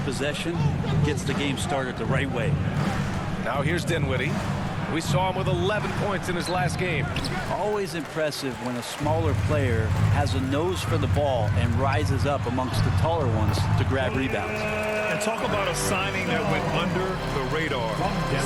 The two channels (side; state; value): both; identical; correlation 1.00